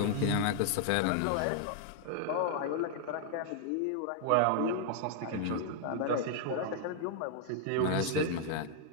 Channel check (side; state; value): both; different; correlation -0.01